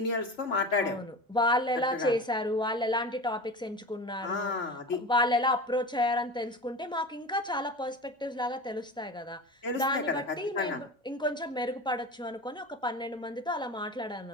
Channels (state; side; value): normal; both; correlation 0.30